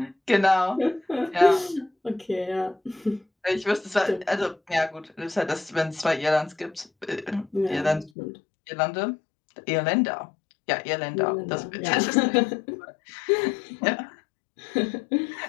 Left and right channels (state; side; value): drops out; right; at 8.1 s